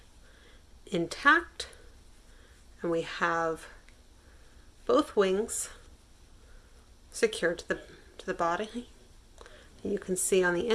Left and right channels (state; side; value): identical; both; correlation 1.00